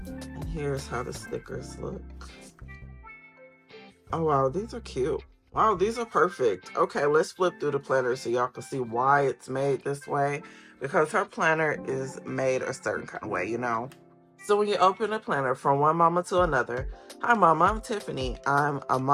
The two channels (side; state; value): both; identical; correlation 1.00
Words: And here's how the stickers look. Oh wow, these are cute. Wow, these are perfect. Okay, let's flip through the planner so y'all can see why it's made this way. Because her planner is made a certain kind of way, you know. So when you open a planner from one mama to another, hi mama, I'm Tiffany. I'm a